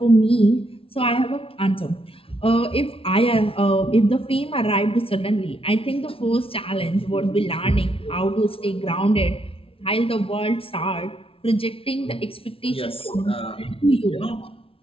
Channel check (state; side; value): late; right; 0.26 ms